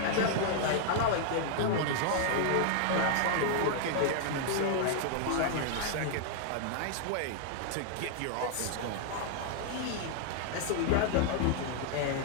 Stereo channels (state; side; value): different; both; correlation -0.01